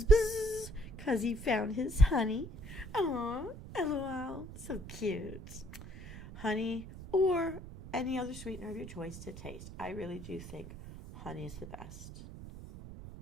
buzz, 'cause he found his honey. Aww, LOL, so cute. Honey or any other sweetener of your choice to taste. I really do think honey is the best.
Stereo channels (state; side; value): noise; right; rumble, 12 dB below the sound